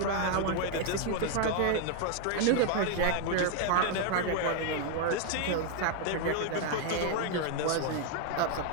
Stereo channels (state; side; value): different; both; correlation 0.00